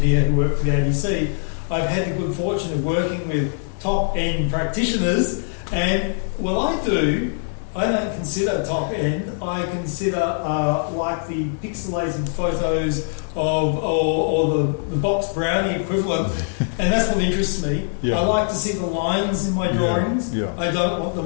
who worked for the ABC. I've had the good fortune of working with top-end practitioners, and what I don't consider top end. I consider like the pixelated photos of or the box brownie equivalent, and that's what interests me. I like to see the lines in my drawings. I don't want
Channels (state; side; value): silent; right; digital silence